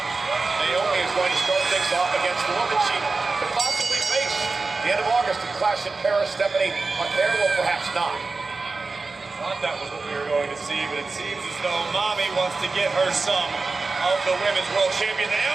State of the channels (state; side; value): quieter; left; 3.9 dB